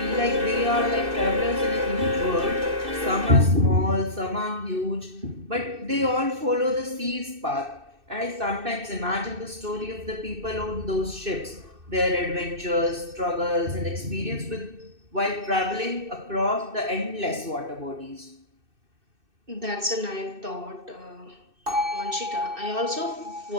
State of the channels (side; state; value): left; late; 2.6 ms